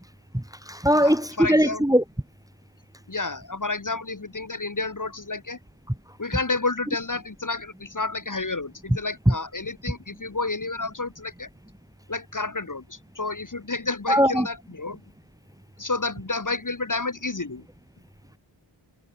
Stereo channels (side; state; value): both; normal; correlation 0.40